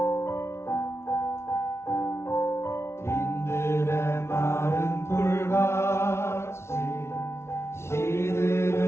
빈들의 마른 돌같이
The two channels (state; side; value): late; right; 0.13 ms